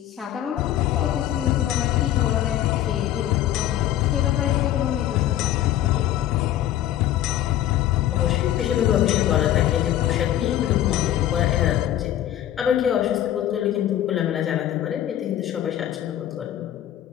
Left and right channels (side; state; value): right; quieter; 12.3 dB